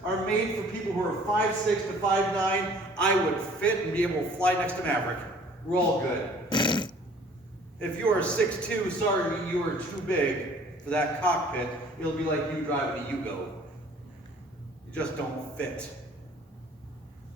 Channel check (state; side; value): normal; both; correlation 0.53